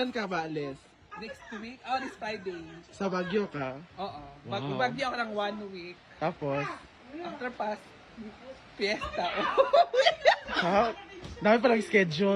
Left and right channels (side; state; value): both; identical; correlation 1.00